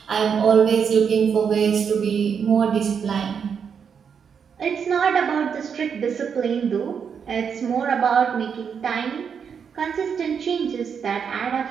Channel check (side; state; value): left; quieter; 6.9 dB